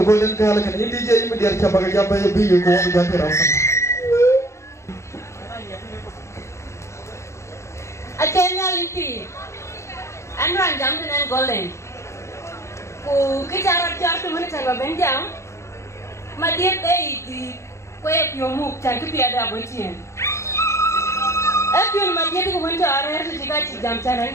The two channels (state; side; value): late; right; 0.14 ms